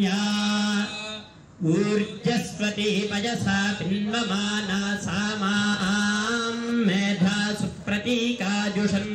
ऊर्जस्वती पयसा पिन्वमाना सा मां मेधा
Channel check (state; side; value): identical; both; correlation 1.00